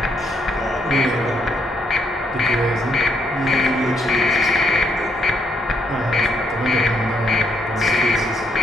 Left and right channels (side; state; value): both; normal; correlation 0.74